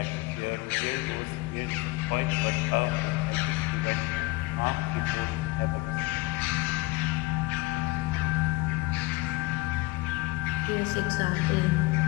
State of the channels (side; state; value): right; quieter; 21.2 dB